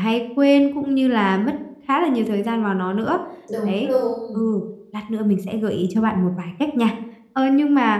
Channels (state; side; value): identical; both; correlation 1.00